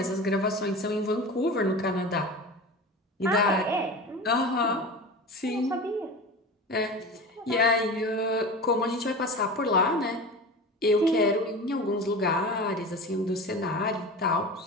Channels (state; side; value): normal; both; correlation 0.32